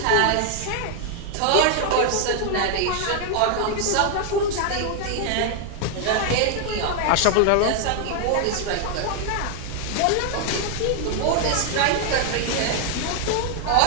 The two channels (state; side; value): different; both; correlation 0.00